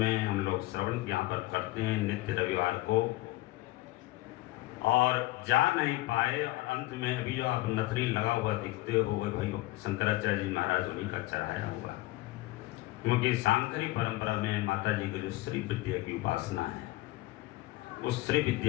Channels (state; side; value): quieter; right; 18.8 dB